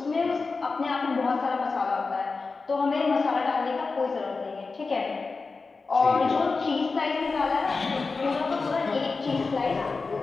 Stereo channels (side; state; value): right; quieter; 4.2 dB